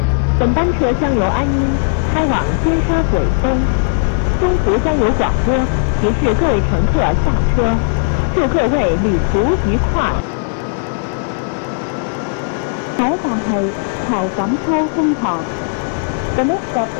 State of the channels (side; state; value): right; silent; digital silence